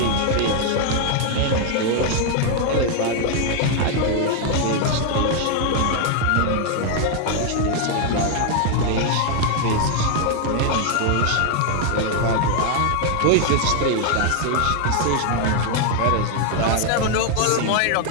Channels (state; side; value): different; both; correlation 0.00